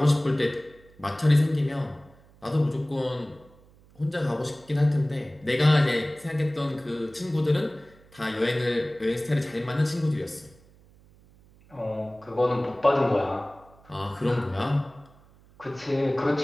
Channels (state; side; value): noise; right; hum, 27 dB below the sound